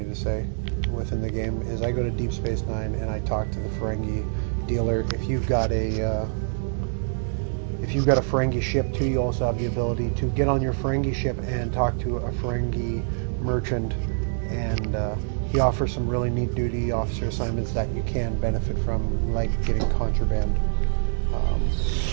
to say within the game, is I go to Deep Space Nine and I talk to the Ferengi dealer. If you've got a Ferengi ship too, you also have the ability to get on your Ferengi ship and talk to a Ferengi merchant, and he offers some really neat duty officer assignments that you can benefit from, like getting contraband.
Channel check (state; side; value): silent; left; digital silence